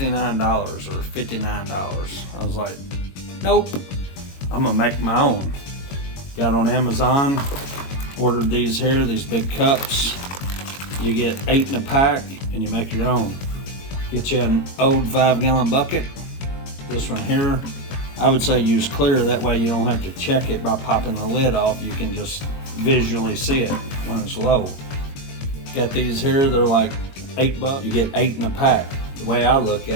or $59. I was like, nope, I'm gonna make my own. Got on Amazon, ordered these here, these big cups. You get 8 in a pack and you make your own. Get you an old 5-gallon bucket. This one here, I would say use clear, that way you don't have to check it by popping the lid off. You can just visually see it when it's low. Got these here, they're like $8. You get 8 in a pack. The way I look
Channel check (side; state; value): right; late; 22 ms